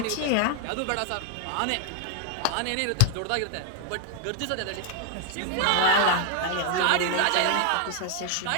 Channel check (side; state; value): both; different; correlation 0.00